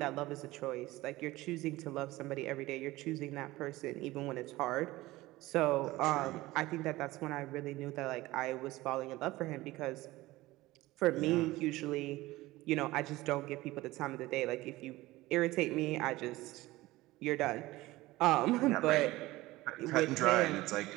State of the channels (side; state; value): left; quieter; 18.6 dB